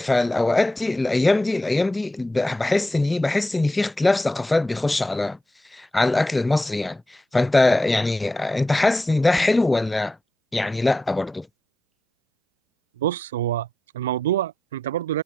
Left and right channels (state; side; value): normal; both; correlation 0.89